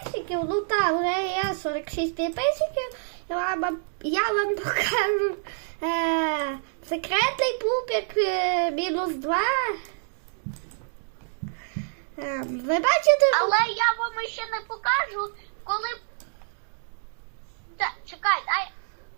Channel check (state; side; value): silent; left; digital silence